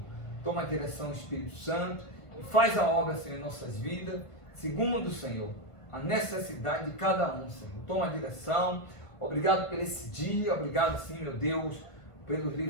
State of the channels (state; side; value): late; right; 1.5 ms